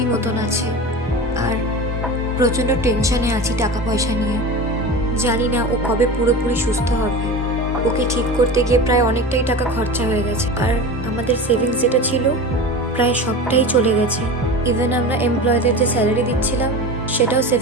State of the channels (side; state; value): both; normal; correlation 0.30